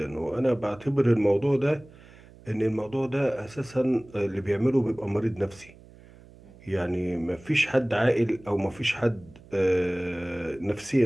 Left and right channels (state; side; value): noise; right; hum, 23 dB below the sound